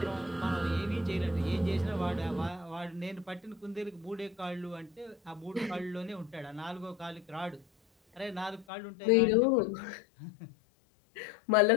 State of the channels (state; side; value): drops out; right; at 8.7 s